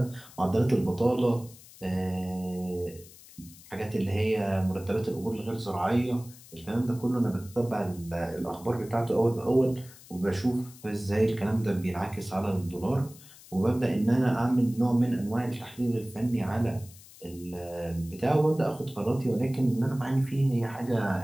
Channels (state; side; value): noise; left; hiss, 21 dB below the sound